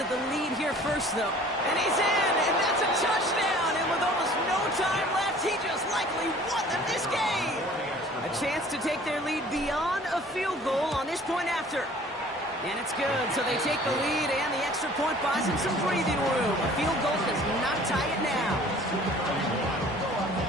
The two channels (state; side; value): normal; both; correlation 0.50